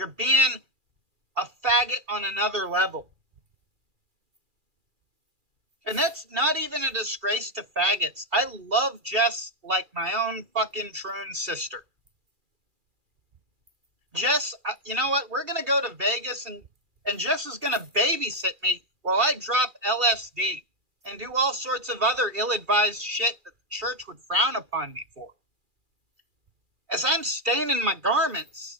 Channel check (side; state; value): left; late; 2.4 ms